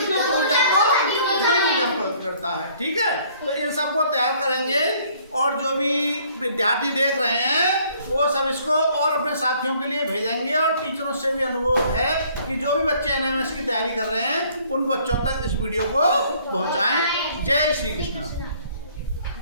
ऊर्जा को ध्वनि ऊर्जा में परिवर्तित करता है। ठीक है, तो इन सबको तैयार करेंगे, और जो भी विद्यार्थी देख रहे हैं वो सब इसको और अपने साथियों के लिए भेजेंगे, और टीचरों से भी अनुरोध है कि जो भी बच्चे एनएमएस की तैयारी कर रहे हैं उन बच्चों तक इस वीडियो को पहुंचाएं। जय श्री कृष्ण।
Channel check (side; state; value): both; inverted; correlation -0.60